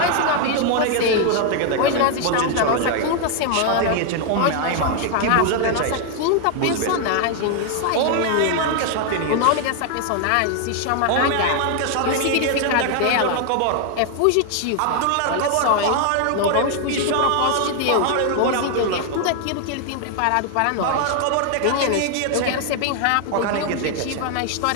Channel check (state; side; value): different; both; correlation 0.00